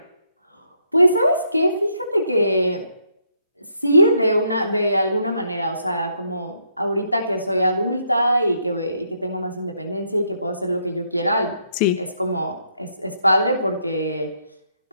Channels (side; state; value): both; inverted; correlation -0.74